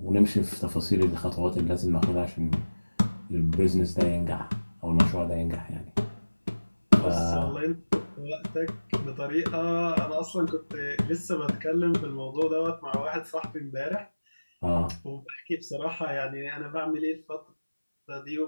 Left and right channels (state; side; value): inverted; both; correlation -1.00